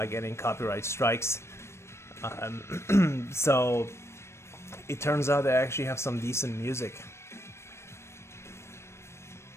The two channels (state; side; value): late; right; 0.13 ms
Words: getting copyright strikes. So it turns out they actually have some decent music.